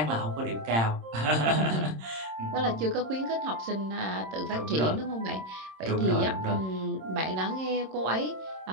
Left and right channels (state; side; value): late; left; 26 ms